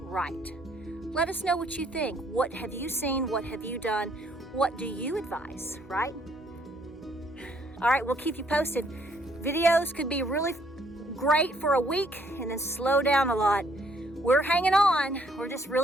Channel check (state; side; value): normal; both; correlation 0.66